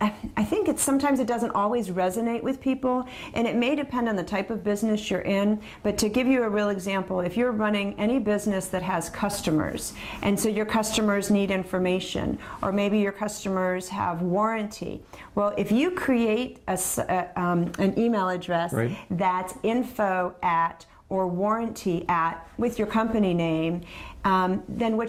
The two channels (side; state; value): both; identical; correlation 1.00